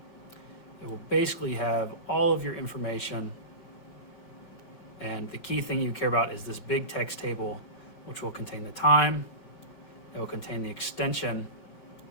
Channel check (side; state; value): right; late; 5.3 ms